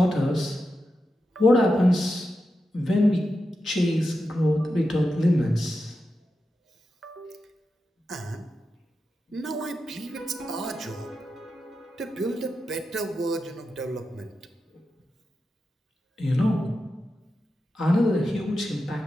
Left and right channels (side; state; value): both; normal; correlation 0.89